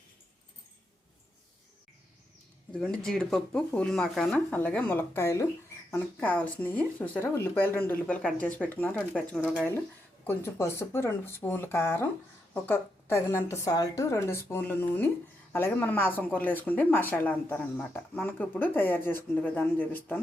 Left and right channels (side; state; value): both; normal; correlation 0.82